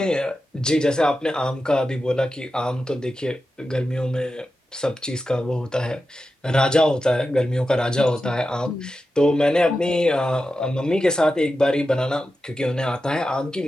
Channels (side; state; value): both; normal; correlation 0.91